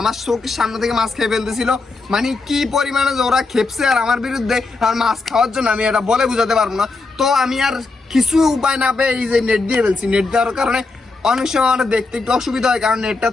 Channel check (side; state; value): right; quieter; 3.7 dB